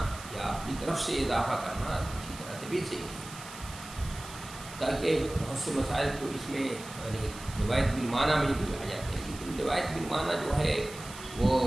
یا اپنی طرف سے اضافہ کرنا کسی طرح سے بھی صحیح نہیں، تاکہ بہت سے مسائل کو اس میں روایت بالمعنی میں بھی آ جاتے ہیں، لیکن روایت بالمعنی جو ہے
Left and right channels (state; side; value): noise; right; hiss, 14 dB below the sound